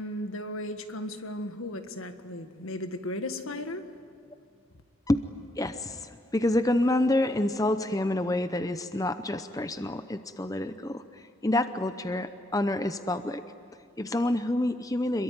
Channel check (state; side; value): normal; both; correlation 0.74